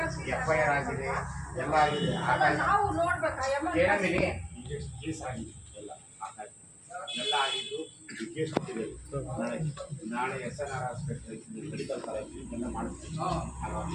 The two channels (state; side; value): identical; both; correlation 1.00